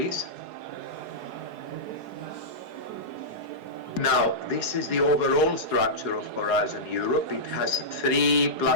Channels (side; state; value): right; late; 4.8 ms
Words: Now, this is the overall structure of Horizon Europe. It has